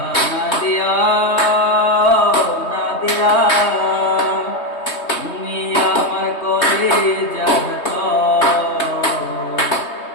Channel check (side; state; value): right; late; 3.2 ms